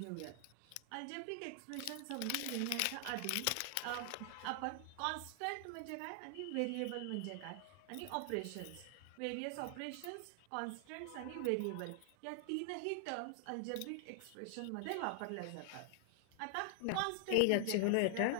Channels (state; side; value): different; both; correlation 0.00